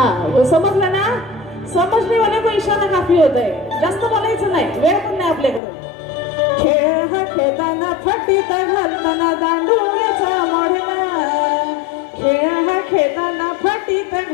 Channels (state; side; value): drops out; right; at 5.6 s